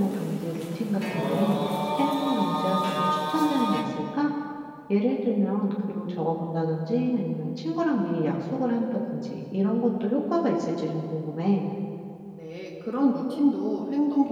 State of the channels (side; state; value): both; identical; correlation 1.00